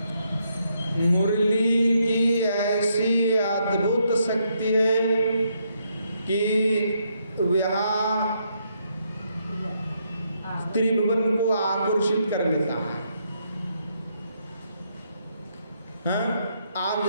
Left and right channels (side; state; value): both; inverted; correlation -0.76